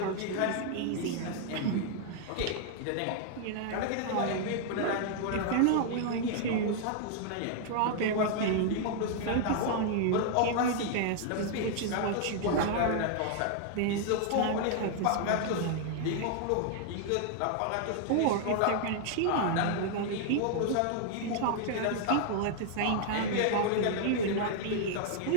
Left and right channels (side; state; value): both; different; correlation 0.00